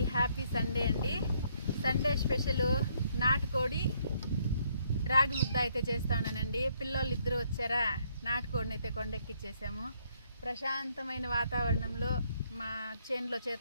హ్యాపీ సండే అండి. సండే స్పెషల్ నాటుకోడి రాగి ముద్ద అయితే చేస్తానండి. పిల్లోళ్ళు ఇద్దరు వచ్చారా, నాటుకోడిని అయితే కొండెక్కిచ్చేసాము. ప్రశాంతమైన వాతావరణంలో మా చేనులో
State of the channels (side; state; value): both; inverted; correlation -0.70